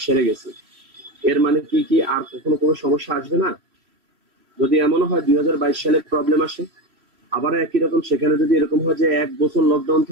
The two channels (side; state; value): left; late; 3.0 ms